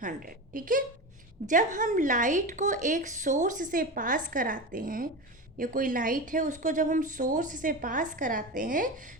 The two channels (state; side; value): normal; both; correlation 0.24